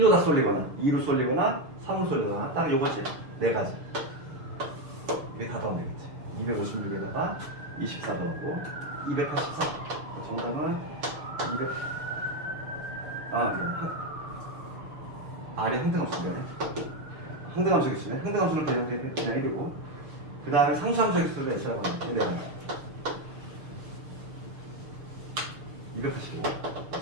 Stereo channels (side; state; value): left; late; 6.6 ms